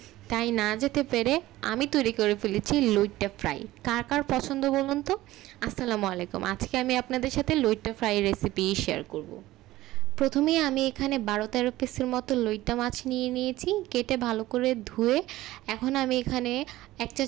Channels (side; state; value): left; quieter; 16.6 dB